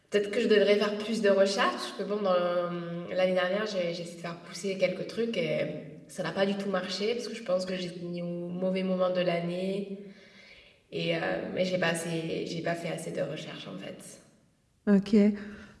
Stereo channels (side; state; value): both; identical; correlation 1.00